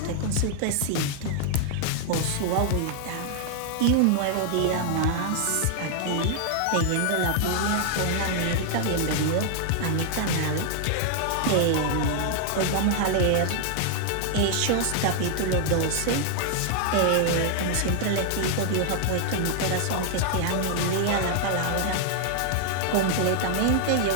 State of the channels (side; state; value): both; different; correlation 0.00